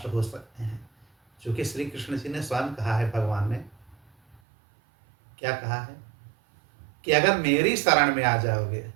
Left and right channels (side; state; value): left; drops out; at 4.4 s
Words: हो सकते हैं। क्योंकि श्री कृष्ण जी ने स्वयं कहा है, भगवान ने क्या कहा है कि अगर मेरी शरण में आ जाओगे